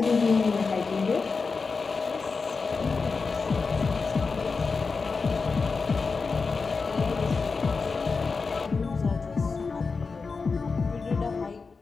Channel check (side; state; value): right; quieter; 4.6 dB